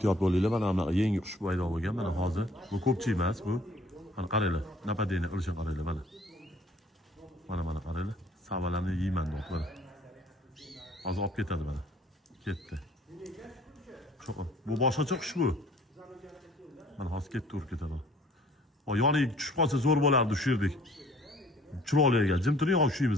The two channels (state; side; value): normal; both; correlation 0.56